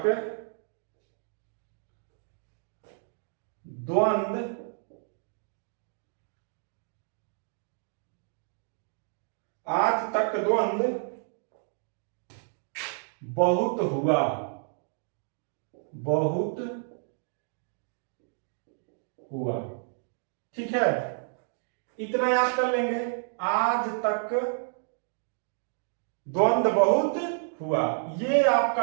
द्वंद्व बहुत हुआ, ठीक है, इतना याद कर लेंगे। आज तक द्वंद्व बहुत हुआ, ये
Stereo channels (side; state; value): left; silent; digital silence